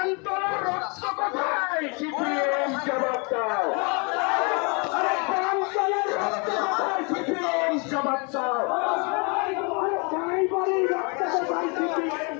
রক্ত কোথায়? সিপিএম জবাব দাও। প্রান্তরের রক্ত কোথায়? সিপিএম জবাব দাও। ড্রাইভারের রক্ত কোথায়? সিপিএম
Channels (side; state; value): right; quieter; 32.8 dB